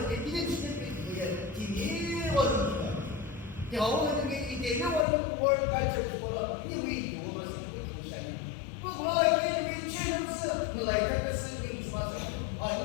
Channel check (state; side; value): drops out; right; at 5.1 s